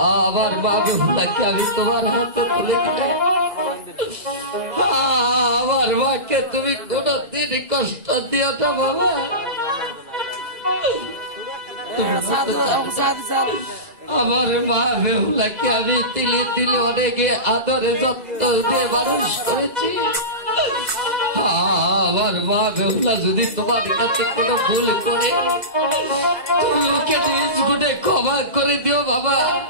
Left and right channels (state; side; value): late; left; 2.0 ms